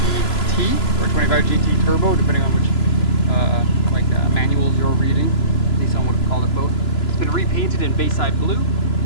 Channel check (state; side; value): late; right; 3.0 ms